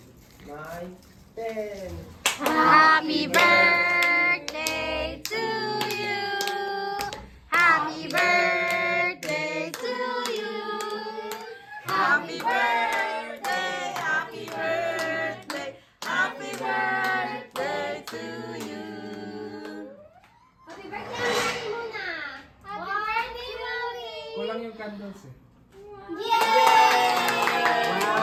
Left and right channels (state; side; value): identical; both; correlation 1.00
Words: 9, 10. Happy birthday to you. Happy birthday to you. Happy birthday, happy birthday, happy birthday to you. Happy birthday, Mami muna! Happy birthday, Mami! Kulang yung candles eh. Yay!